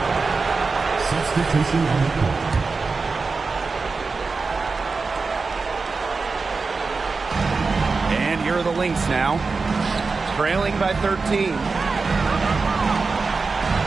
Substitution on the court. And here are the Lynx now. Trailing by 13.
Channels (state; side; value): quieter; left; 4.3 dB